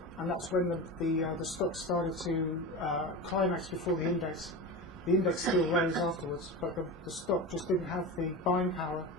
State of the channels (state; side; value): normal; both; correlation 0.26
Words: and that's when the stock started to climax before the index. The index still rose afterwards, but the stock just didn't have the buying power